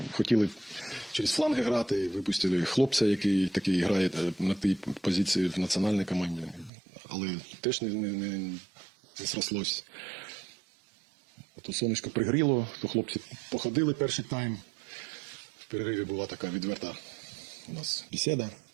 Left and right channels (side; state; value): left; drops out; at 6.7 s